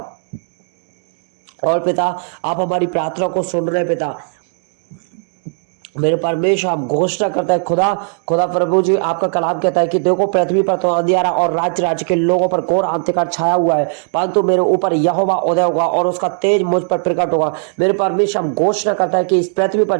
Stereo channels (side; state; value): left; silent; 68 dB below the other